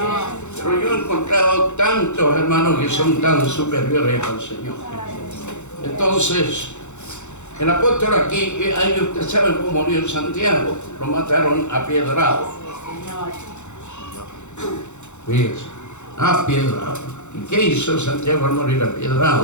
Pero yo he encontrado tantos hermanos que son tan superiores al Señor. Entonces, el apóstol aquí, ahí usted sabe cómo murió Santiago, lo mataron a piedrado. Fíjese, a piedrado. ¿Y qué hizo Santiago al morir a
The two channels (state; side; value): late; right; 0.83 ms